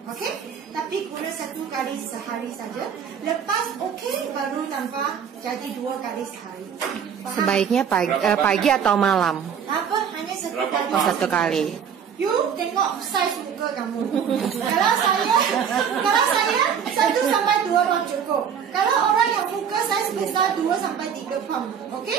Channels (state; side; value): quieter; left; 7.7 dB